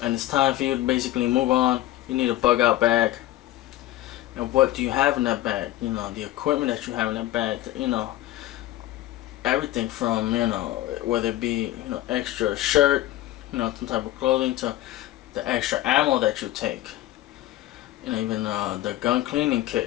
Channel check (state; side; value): quieter; right; 15.0 dB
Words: and it's time for you to basically move on, you need a bug out bag. And what do you have in that bag? The equipment that you have in that bag, everything from, whether it be, extra shirt, some type of clothing, to the extra ammo that you take. Even the gun cleaning